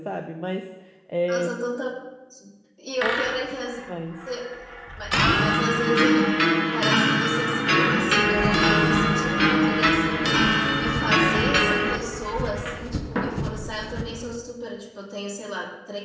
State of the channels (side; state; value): both; identical; correlation 1.00